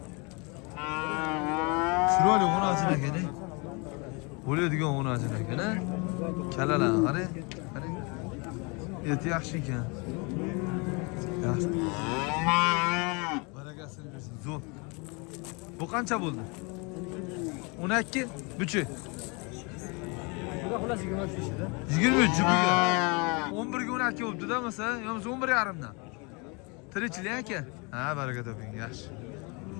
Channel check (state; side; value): quieter; right; 30.6 dB